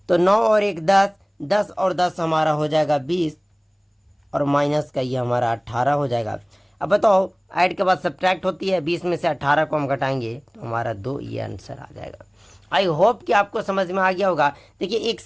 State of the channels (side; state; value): both; identical; correlation 1.00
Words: तो 9 और 1 10, 10 और 10 हमारा हो जाएगा 20, और माइनस का ये हमारा 18 हो जाएगा। अब बताओ ऐड के बाद सब्ट्रैक्ट होती है, 20 में से 18 को हम घटाएंगे तो हमारा 2, ये आंसर आ जाएगा। आई होप कि आपको समझ में आ गया होगा। देखिए एक